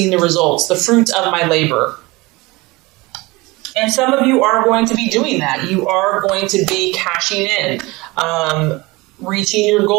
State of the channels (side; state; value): left; quieter; 22.9 dB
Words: the results, the fruits of my labor. And some of you are going to be doing that. You are going to be cashing in, reaching your